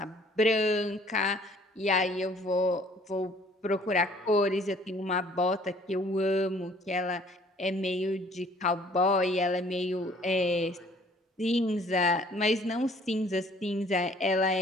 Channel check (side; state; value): both; normal; correlation 0.57